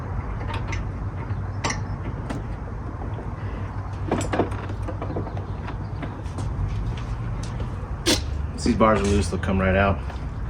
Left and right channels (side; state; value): both; identical; correlation 1.00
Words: Once these bars are loose, they'll come right out.